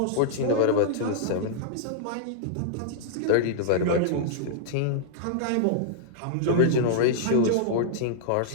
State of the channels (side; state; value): both; different; correlation -0.01